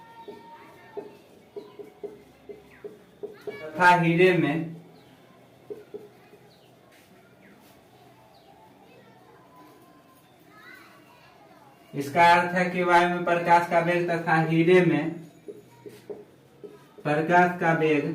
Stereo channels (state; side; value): identical; both; correlation 1.00